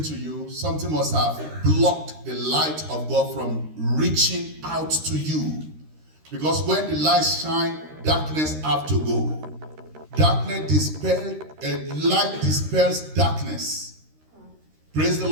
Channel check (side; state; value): left; late; 13 ms